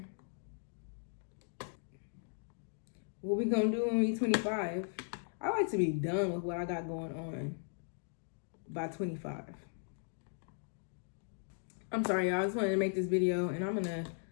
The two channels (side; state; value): right; silent; digital silence